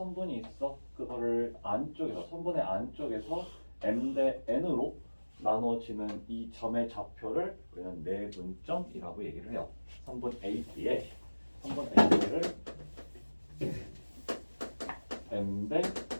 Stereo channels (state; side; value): inverted; both; correlation -1.00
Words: 있어. 그거를 안쪽에서 선분의 안쪽에서 M 대 N으로 나눠지는 이 점의 좌표를 우리는 내분점이라고 얘기를 해요. 선분 AB의 선분 AB를 M 대